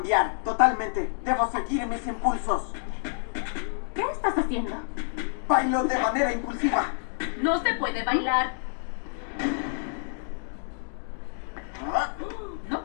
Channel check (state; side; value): silent; right; digital silence